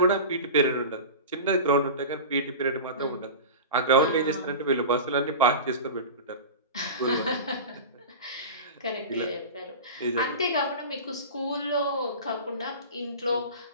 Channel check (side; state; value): both; inverted; correlation -0.30